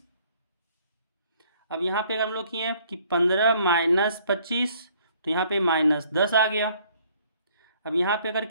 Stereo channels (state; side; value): inverted; both; correlation -0.62